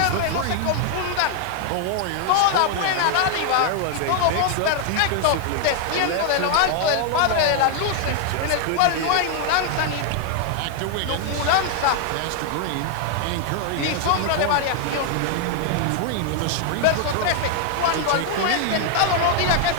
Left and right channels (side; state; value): both; different; correlation 0.00